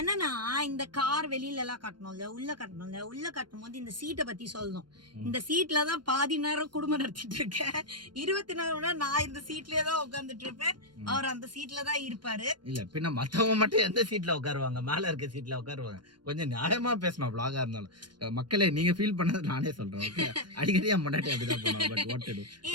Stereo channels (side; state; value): left; late; 0.71 ms